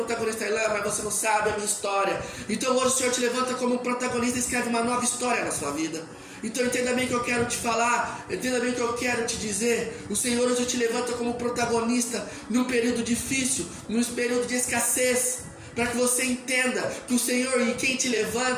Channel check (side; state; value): both; identical; correlation 1.00